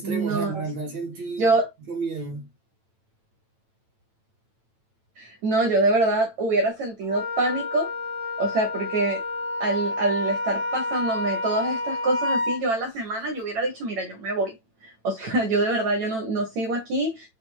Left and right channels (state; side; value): late; left; 9.0 ms